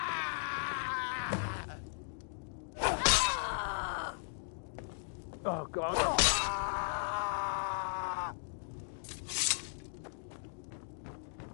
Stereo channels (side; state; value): right; silent; digital silence